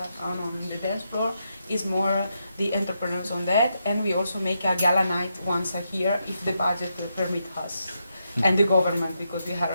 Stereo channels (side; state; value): both; inverted; correlation -0.83